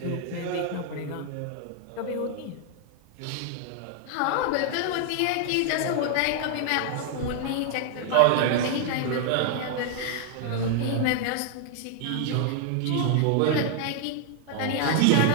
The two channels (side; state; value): both; different; correlation 0.00